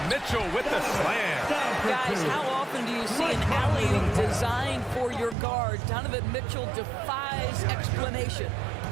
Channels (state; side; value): drops out; left; at 5.4 s